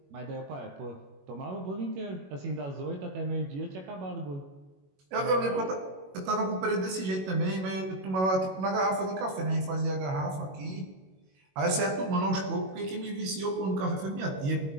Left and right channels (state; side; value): late; left; 21 ms